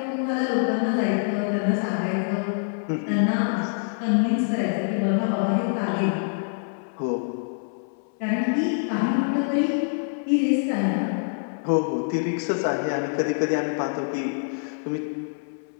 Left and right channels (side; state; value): right; silent; 61 dB below the other